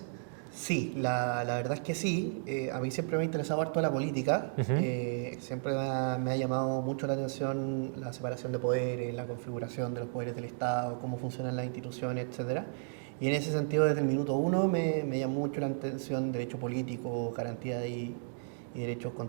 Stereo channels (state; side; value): silent; left; digital silence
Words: Sí, la verdad es que sí. A mí siempre me ha interesado harto la política. Siempre me ha llamado mucho la atención la separación de poderes, la configuración de los poderes del Estado, cómo funcionan las instituciones, etc. Y en ese sentido, desde el minuto uno, me llamó mucho la atención derecho político, garantía y derechos